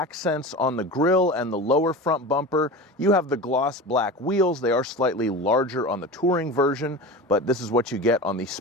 on the grille and the lower front bumper. You have the gloss black wheels. They are slightly larger on the touring version, but this is what you get on the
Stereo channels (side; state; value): both; normal; correlation 0.30